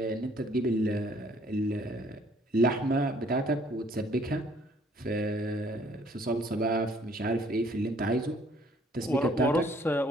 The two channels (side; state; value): both; normal; correlation 0.61